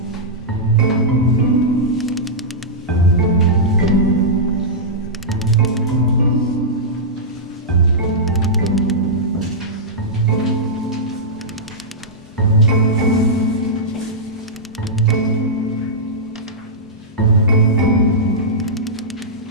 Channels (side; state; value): both; normal; correlation -0.12